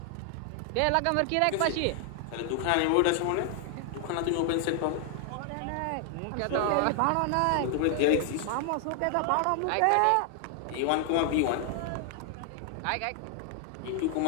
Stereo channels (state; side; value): different; both; correlation 0.00